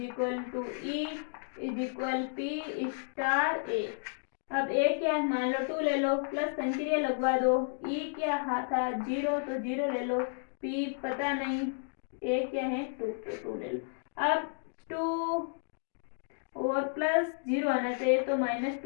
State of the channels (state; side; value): silent; right; digital silence